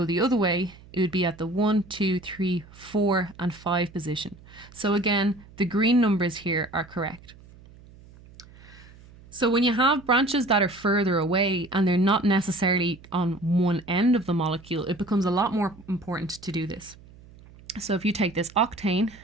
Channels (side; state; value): right; noise; hum, 22 dB below the sound